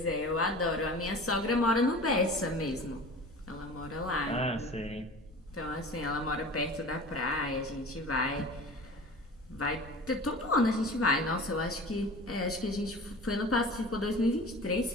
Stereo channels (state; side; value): normal; both; correlation 0.39